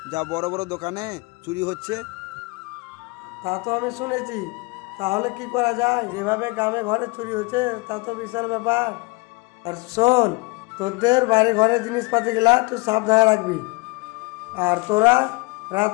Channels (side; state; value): right; quieter; 26.3 dB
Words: যা বড় বড় দোকানে চুরি হচ্ছে। তা তো আমি শুনেছি, তাহলে কি করা যায়? যেভাবে গ্রামে ঘরে চুরি হচ্ছে তা তো বিশাল ব্যাপার। আর শোন, তোদের বাড়ি ঘরের জিনিসপাতি গুলা তুই সাবধানে রাখবি। আর তোরা